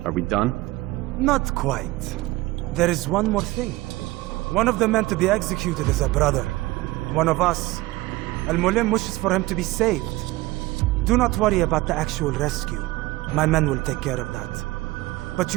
Are we done? Not quite. There is one more thing. One of the men to be executed is a brother. One of us. Al-Mulim wishes for him to be saved. Do not worry about the actual rescue. My men will take care of that. But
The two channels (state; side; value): quieter; left; 19.4 dB